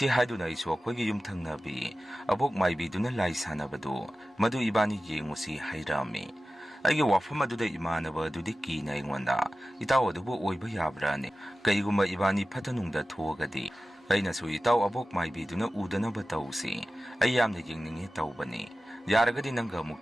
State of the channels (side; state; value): both; normal; correlation 0.95